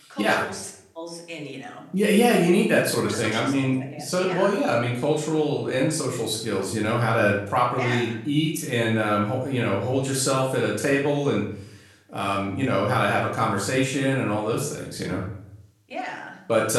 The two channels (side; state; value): both; identical; correlation 1.00